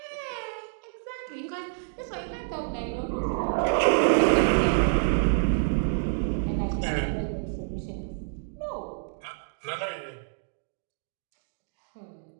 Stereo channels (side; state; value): left; silent; digital silence